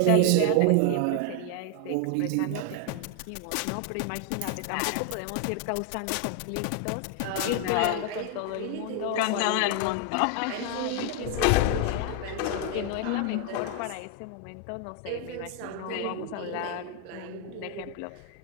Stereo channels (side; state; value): both; different; correlation 0.00